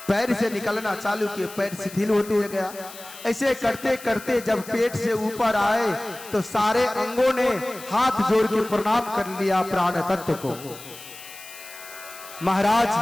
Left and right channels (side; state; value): left; noise; hiss, 16 dB below the sound